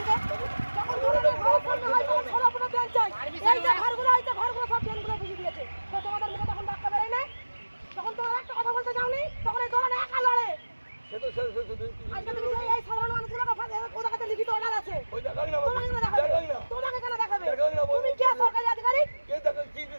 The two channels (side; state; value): both; inverted; correlation -1.00